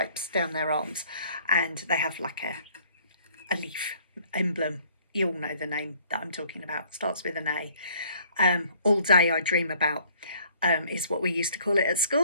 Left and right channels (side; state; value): both; inverted; correlation -0.59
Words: down their arms, and they have like a leaf emblem. You all know the name that I'm talking about. Starts with an A. All Day I Dream About is what we used to call it at